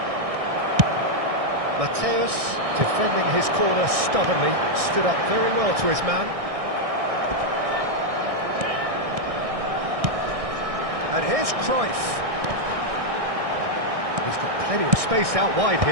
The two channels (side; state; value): left; late; 1.6 ms